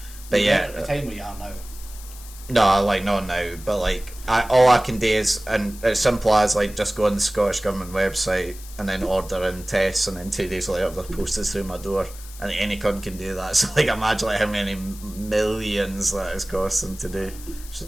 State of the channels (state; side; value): noise; left; hiss, 17 dB below the sound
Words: But at the time where you are now. No, not now. But all I can do is, and it's simple as just go on the Scottish Government website and then order in tests, and then 2 days later they're posted through my door. And any cunt can do that. So imagine how many millions that is costing to do. It's